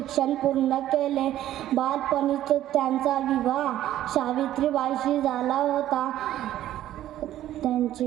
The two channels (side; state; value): left; quieter; 12.9 dB